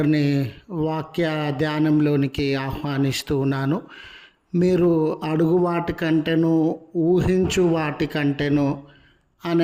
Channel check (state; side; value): identical; both; correlation 1.00